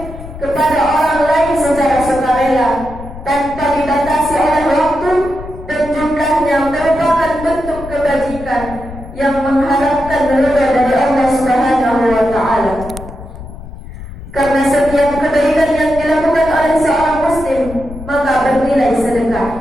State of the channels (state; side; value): noise; left; rumble, 13 dB below the sound